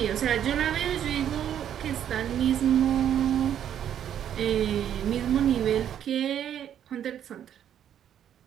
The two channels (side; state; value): left; quieter; 9.9 dB